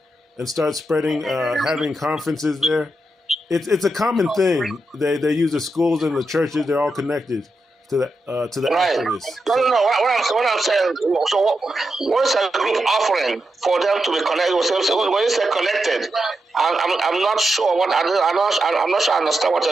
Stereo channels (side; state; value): both; normal; correlation 0.86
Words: and start spreading, having conferences there, it's a common thing. They use the schools and the churches. They're all connected to the right. activists. No. What I'm saying. So what is a group offering for them to be connected? When you say connected, I'm not sure what I'm not sure I understand